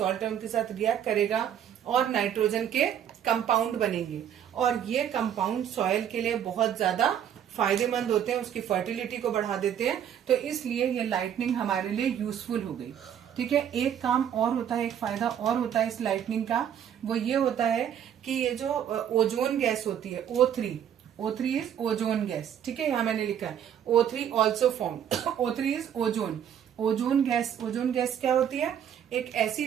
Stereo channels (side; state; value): left; quieter; 9.4 dB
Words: है उनके साथ रिएक्ट करेगा और नाइट्रोजन के कंपाउंड बनेंगे, और ये कंपाउंड सॉइल के लिए बहुत ज्यादा फायदेमंद होते हैं, उसकी फर्टिलिटी को बढ़ा देते हैं। तो इसलिए ये लाइटनिंग हमारे लिए यूजफुल हो गई। ठीक है, एक काम और होता है, एक फायदा और होता है इस लाइटनिंग का, वो ये होता है कि ये जो ओजोन गैस होती है O3 इज ओजोन गैस। ठीक है, यहाँ मैंने लिखा है O3 also form, O3 is ozone. Ozone gas क्या होती है? एक ऐसी